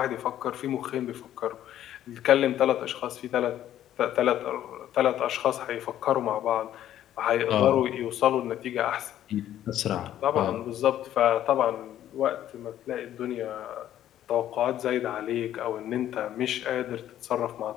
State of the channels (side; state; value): right; quieter; 11.9 dB